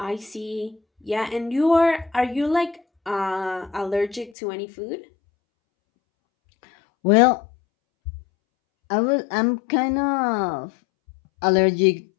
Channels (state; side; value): drops out; right; at 4.3 s